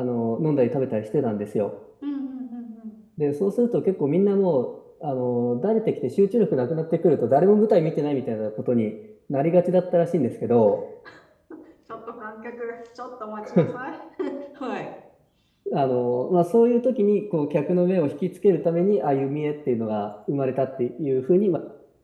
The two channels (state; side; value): identical; both; correlation 1.00